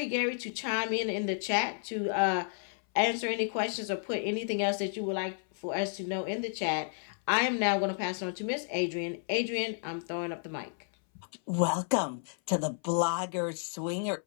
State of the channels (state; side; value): silent; right; 57 dB below the other